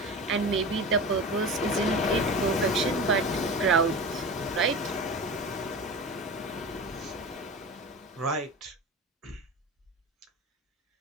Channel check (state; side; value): normal; both; correlation 0.30